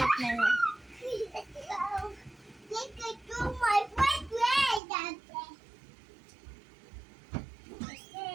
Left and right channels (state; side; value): drops out; left; at 4.8 s